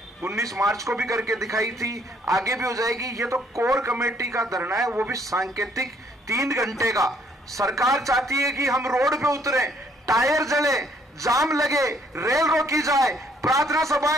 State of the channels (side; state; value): both; normal; correlation 0.66